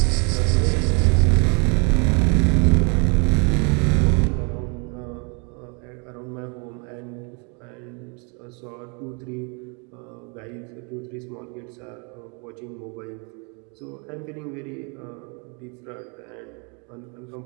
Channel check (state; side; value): quieter; left; 35.0 dB